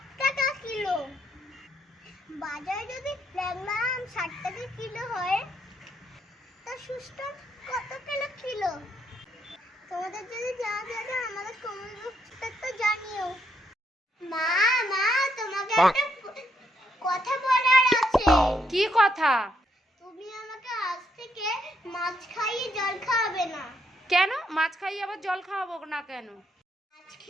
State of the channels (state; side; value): normal; both; correlation 0.75